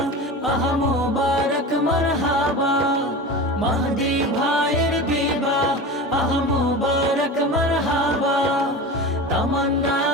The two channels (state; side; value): normal; both; correlation 0.30